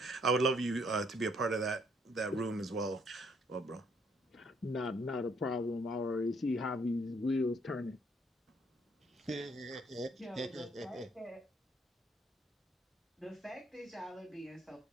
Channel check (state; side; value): normal; both; correlation 0.67